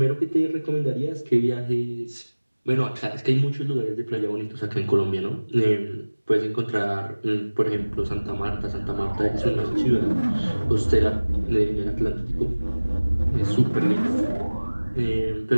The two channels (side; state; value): both; inverted; correlation -1.00